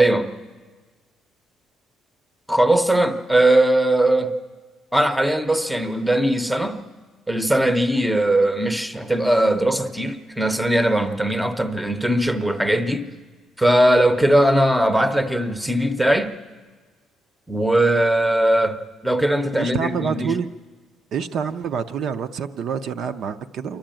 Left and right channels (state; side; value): normal; both; correlation 0.91